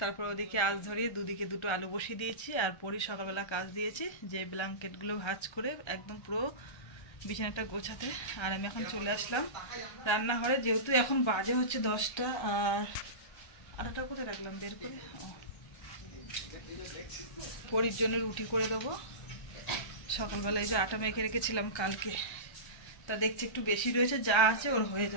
ওদিকে আঁচ ধরিয়ে দুদিকে দুটো আলু বসিয়ে দিয়েছি। আর পরই সকালবেলা কাজ দিয়েছি যে ব্ল্যাঙ্কেটগুলো ভাঁজ করে একদম পুরো বিছানাটা গোছাতে। আর আমি এখন চলে আসলাম রান্নাঘরে, যেহেতু এখন বাজে হচ্ছে 10টা। আর আটাটা কোথায় রাখলাম বের করে, পরির জন্য রুটি করে দেবো। সকালবেলায় যে আটা মেখে রেখেছিলাম কালকে, তা দেখছি একটু বেশি রয়েছে, যা আছে ওর হয়ে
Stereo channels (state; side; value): late; right; 1.3 ms